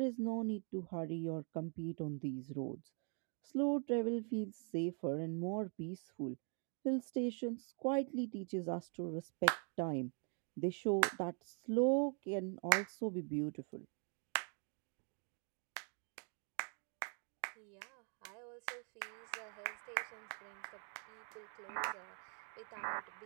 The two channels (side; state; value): left; quieter; 39.2 dB